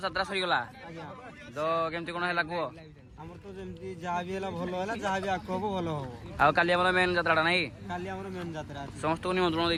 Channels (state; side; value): identical; both; correlation 1.00